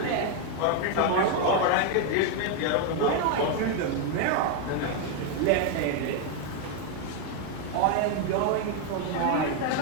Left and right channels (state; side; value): different; both; correlation 0.01